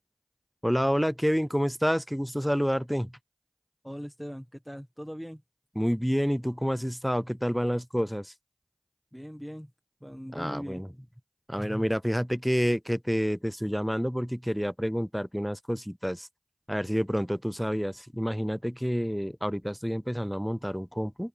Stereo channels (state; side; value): identical; both; correlation 1.00